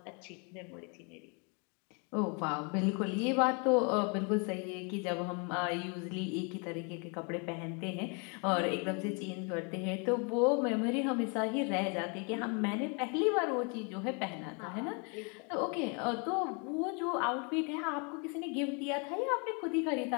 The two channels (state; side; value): quieter; right; 34.8 dB